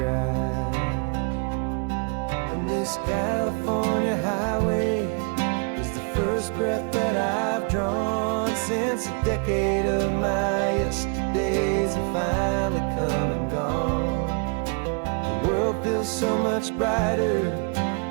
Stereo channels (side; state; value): left; quieter; 38.9 dB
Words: And this California highway is the first breath that I've drawn since a decade of my yesterdays have finally come and gone. The world feels so much brighter